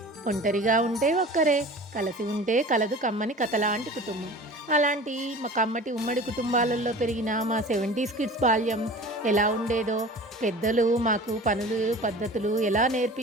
ఒంటరిగా ఉంటే ఒక్కరే, కలిసి ఉంటే కలదు కమ్మని కథలాంటి కుటుంబం. అలాంటి మా కమ్మటి ఉమ్మడి కుటుంబాలలో పెరిగిన మా 70s కిడ్స్ బాల్యం ఎలా ఉండేదో, పెద్దలు మాకు పనులు పద్ధతులు ఎలా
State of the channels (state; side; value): normal; both; correlation 0.39